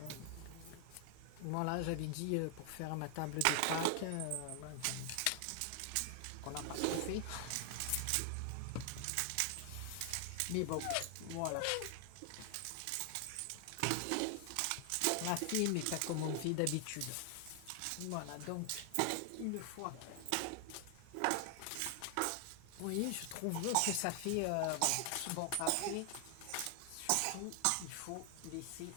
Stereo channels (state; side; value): different; both; correlation 0.00